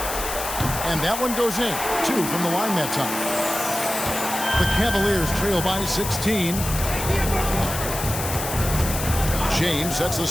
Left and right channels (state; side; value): noise; left; hiss, 6 dB below the sound